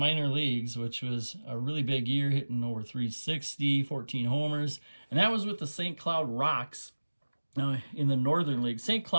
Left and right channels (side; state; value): both; inverted; correlation -1.00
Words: leagues, which was a really big year, hitting over 360, 14 homers. And that was with the St. Cloud Rocks in the Northern League. St.